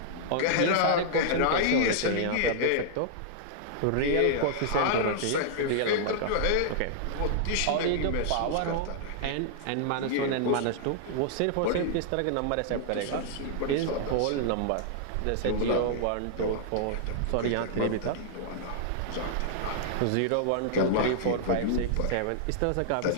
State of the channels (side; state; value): both; different; correlation -0.01